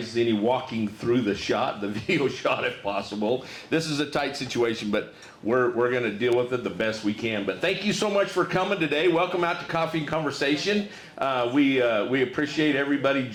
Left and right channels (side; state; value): both; identical; correlation 1.00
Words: any walking through the video shot if possible. This is a tight situation, but we're going to deal with it the best we can. But thank you so much for coming today. Welcome out to Coffee and Conversation. We appreciate everybody